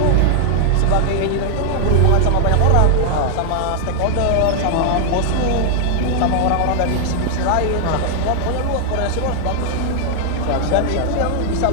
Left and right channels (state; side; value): different; both; correlation 0.00